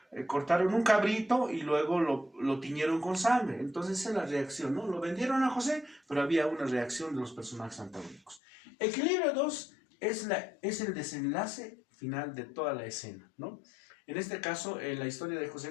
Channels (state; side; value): drops out; right; at 8.4 s